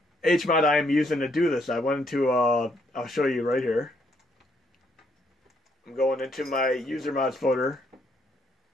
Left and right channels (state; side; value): normal; both; correlation 0.72